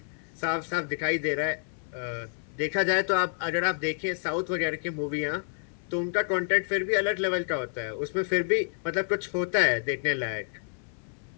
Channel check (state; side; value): silent; right; 59 dB below the other